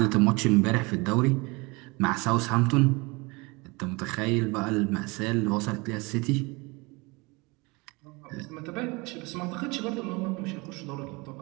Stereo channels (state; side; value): quieter; left; 26.3 dB